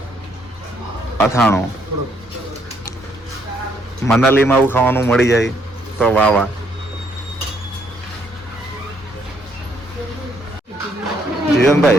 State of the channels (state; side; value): normal; both; correlation 0.70